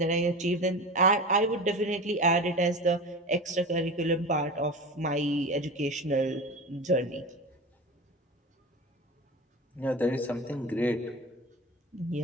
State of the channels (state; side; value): normal; both; correlation 0.30